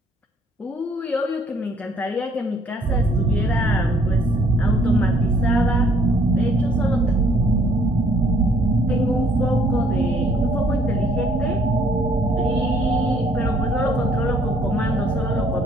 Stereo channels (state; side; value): normal; both; correlation 0.62